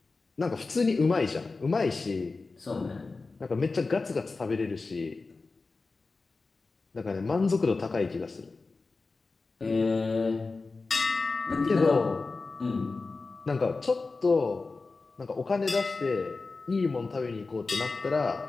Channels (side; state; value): right; quieter; 3.9 dB